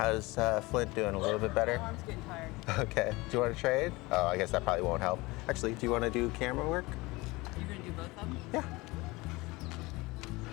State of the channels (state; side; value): quieter; right; 22.4 dB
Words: Flint doing? A little bit better? My arm's getting tired. Okay. Do you want to trade? Oh, I guess that probably won't help. Actually, do you want to do camera work? You're gonna do both of them? Yeah.